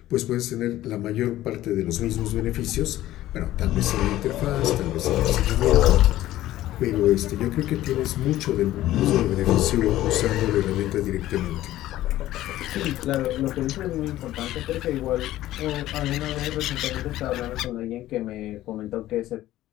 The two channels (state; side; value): quieter; right; 14.7 dB